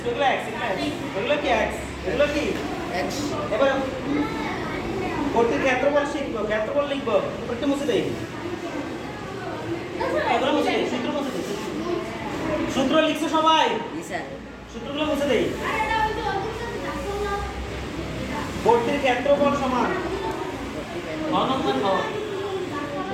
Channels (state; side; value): identical; both; correlation 1.00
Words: 2 এগুলো কি x এগুলো কি x এবার বর্তির ক্ষেত্রফল লিখবো একটু মুছে দেই এগুলো মুছে দেই সূত্র লিখছো সবাই স্যার সূত্রগুলো মুছে দেই বর্তির ক্ষেত্রফল সমান অনন্তন হওয়া